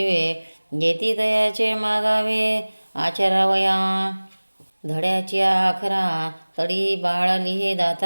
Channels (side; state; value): both; inverted; correlation -1.00